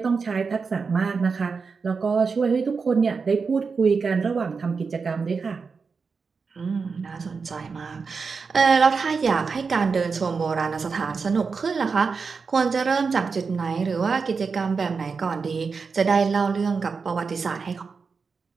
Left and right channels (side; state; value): left; quieter; 5.1 dB